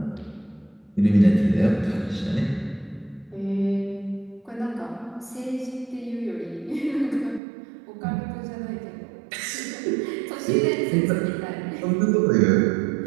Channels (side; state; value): left; drops out; at 7.4 s